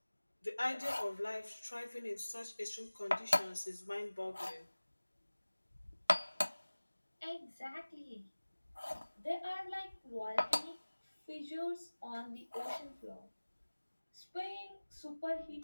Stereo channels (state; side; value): inverted; both; correlation -1.00